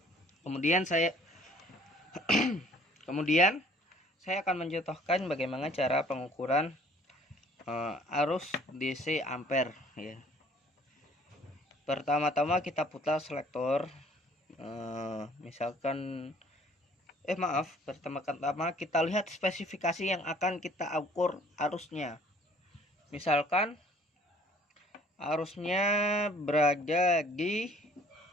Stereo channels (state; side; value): normal; both; correlation 0.56